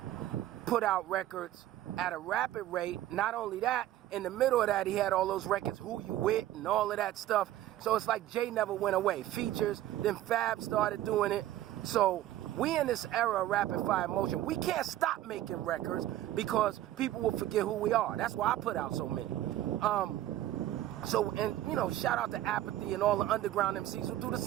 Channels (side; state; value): left; quieter; 13.6 dB